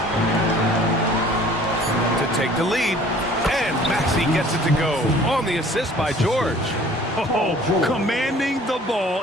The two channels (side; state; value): both; normal; correlation 0.51